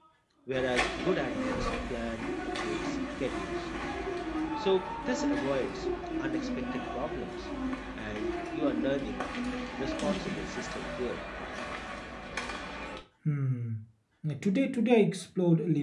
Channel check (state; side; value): identical; both; correlation 1.00